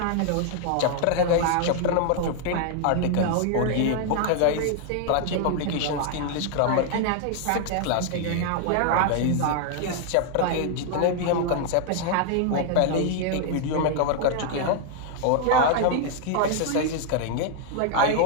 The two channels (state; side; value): different; both; correlation 0.00